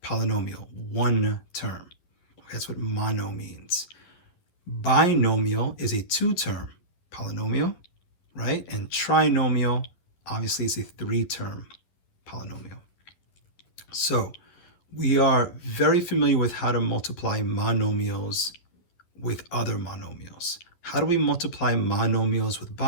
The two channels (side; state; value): right; late; 11 ms